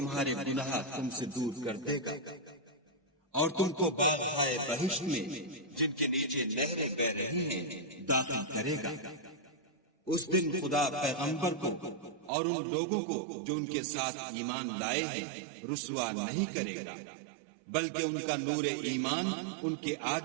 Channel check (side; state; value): left; drops out; at 12.3 s